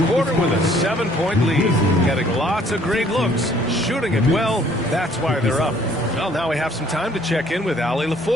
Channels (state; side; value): normal; both; correlation 0.60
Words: quarter with a 7-point lead. Getting lots of great looks, shooting it well. That's why they're up. Well, now we have some time to check in with Allie